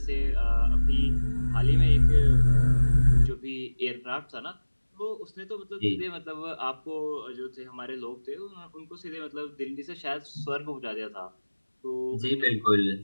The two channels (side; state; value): both; inverted; correlation -1.00